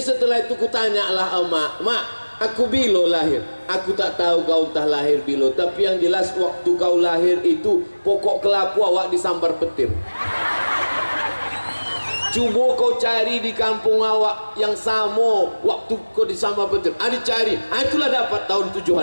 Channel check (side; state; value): both; inverted; correlation -1.00